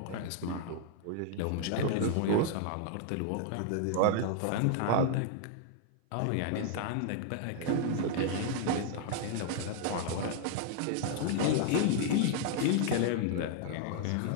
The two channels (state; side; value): different; both; correlation -0.01